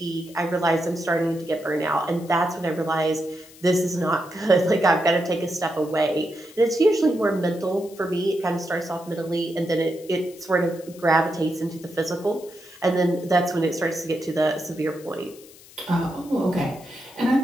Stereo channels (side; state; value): left; noise; hiss, 22 dB below the sound